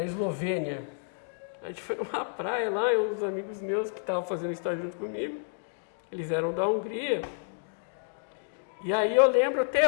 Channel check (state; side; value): silent; right; digital silence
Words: Eslovênia. A gente foi numa praia lá, e uns amigos meus que estavam fazendo estágio junto comigo, eles eram da Hungria. E aí eu lembro até